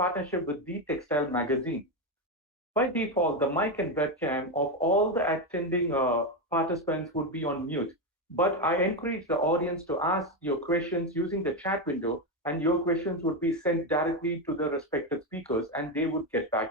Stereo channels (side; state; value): both; normal; correlation 0.10